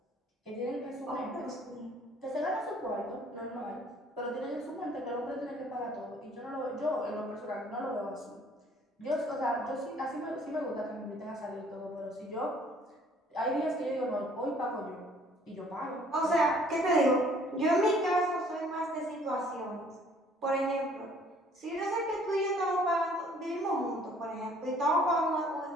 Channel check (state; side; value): normal; both; correlation 0.58